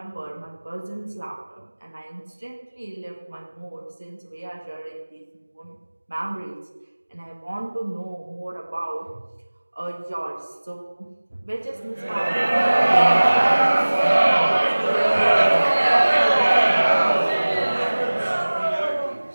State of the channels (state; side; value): inverted; both; correlation -1.00